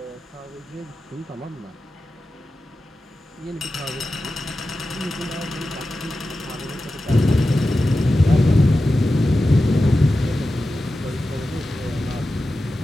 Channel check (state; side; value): normal; both; correlation 0.93